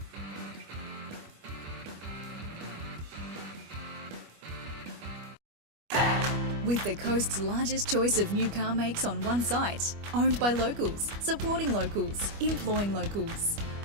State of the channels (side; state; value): left; late; 25 ms